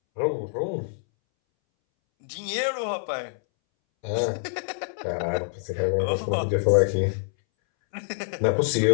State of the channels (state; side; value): silent; right; 61 dB below the other